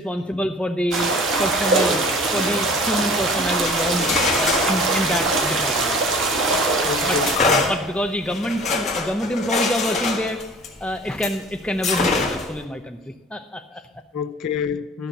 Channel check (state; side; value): normal; both; correlation 0.46